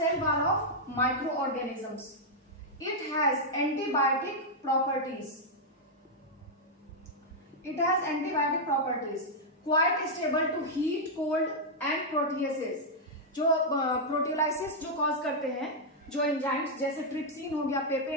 wall of microorganisms. It has antibiotic properties, quite stable to heat, cold and proteases. जो प्रोटियोलाइसिस जो कॉज करते हैं, जो एंजाइम्स जैसे ट्रिप्सिन हो गया,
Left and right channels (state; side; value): normal; both; correlation -0.04